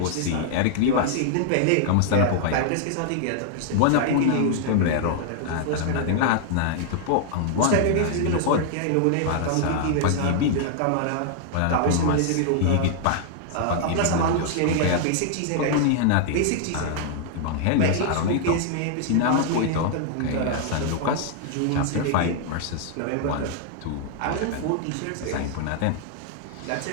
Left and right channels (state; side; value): different; both; correlation -0.01